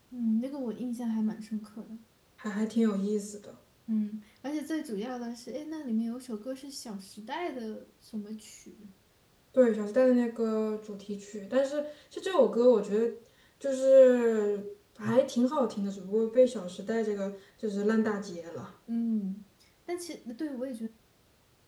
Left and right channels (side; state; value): both; identical; correlation 1.00